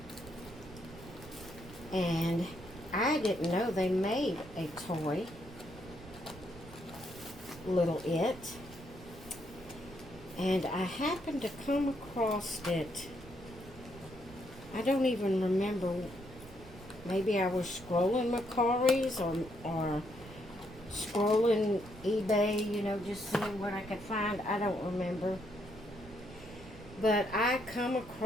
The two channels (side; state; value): right; noise; rumble, 17 dB below the sound